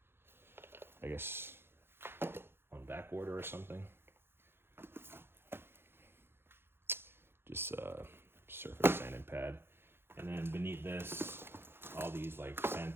I guess, on back order or something. Just surface sanding pad. And then beneath this, all these like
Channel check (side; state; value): left; late; 0.11 ms